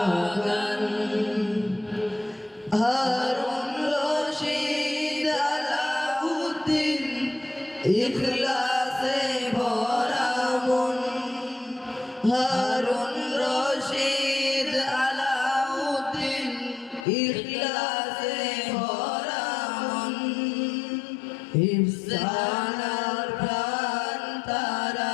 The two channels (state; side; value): drops out; right; at 17.1 s